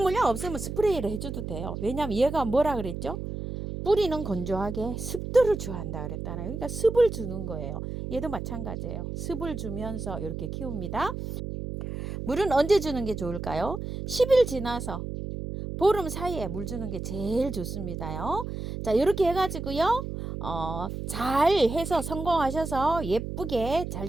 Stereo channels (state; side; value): noise; right; hum, 6 dB below the sound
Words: 몰약 없으면 스프레이를 해줘도 돼요. 왜냐면 얘가 뭐라 그랬죠? 뿌리는 건조하게 습도를 좋아한다 그랬잖아요. 그러니까 습을 주는 거예요. 얘도 마찬가지예요. 습을 주면서 이렇게 키웁니다. 물은 언제 주는 게 좋을까요? 10일 지나서 보름 사이에 물 주는 게 제일 좋습니다요. 자, 이렇게 해가지고요. 잘 해서 성공하셔서 예쁘게 잘